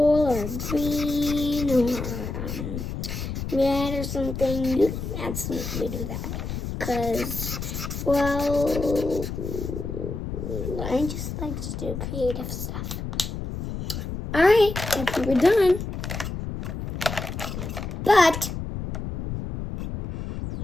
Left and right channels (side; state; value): left; noise; rumble, 5 dB below the sound